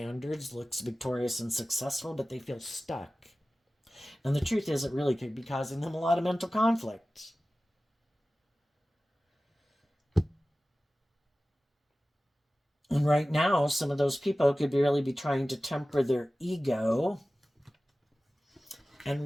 looks victorious and successful, but they feel stuck. And the truth is, it really could be causing them a lot of mental conflict. And right now, some of those people could really be trying to temper their ego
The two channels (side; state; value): both; normal; correlation 0.96